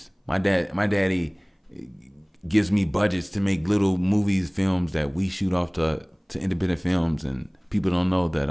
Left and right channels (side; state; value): both; identical; correlation 1.00